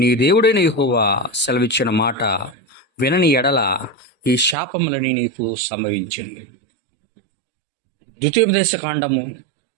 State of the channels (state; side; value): drops out; left; at 4.5 s